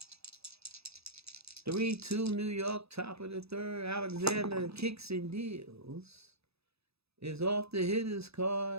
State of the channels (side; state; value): left; late; 0.78 ms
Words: 3-2 New York, top of the third. Alexander kicks and deals. Is off the hitter's